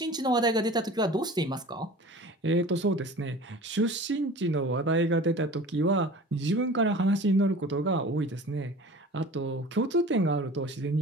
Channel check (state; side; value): normal; both; correlation 0.40